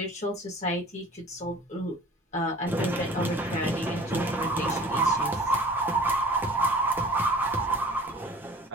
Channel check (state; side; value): normal; both; correlation 0.46